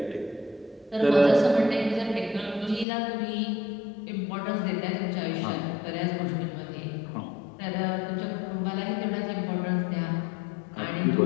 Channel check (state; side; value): drops out; right; at 2.9 s